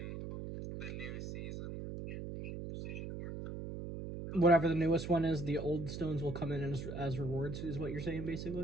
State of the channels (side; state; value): right; noise; hum, 7 dB below the sound